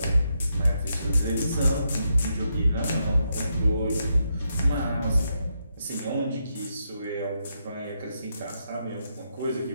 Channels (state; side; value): inverted; both; correlation -0.81